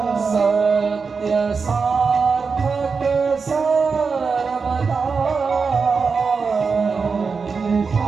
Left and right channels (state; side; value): quieter; left; 5.1 dB